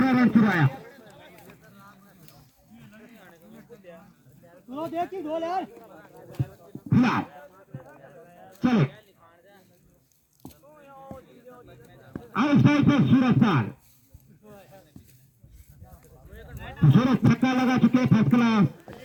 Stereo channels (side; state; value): both; identical; correlation 1.00